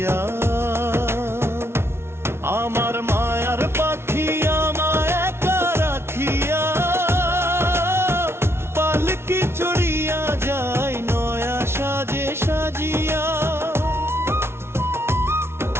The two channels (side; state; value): left; late; 0.12 ms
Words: আমার মায়ার পাখি আমায় একা রাখিয়া, পালকি চড়িয়া যায় নয়া সাজে সাজিয়া।